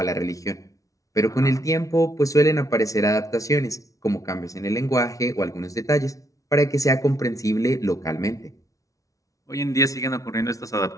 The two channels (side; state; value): right; late; 0.17 ms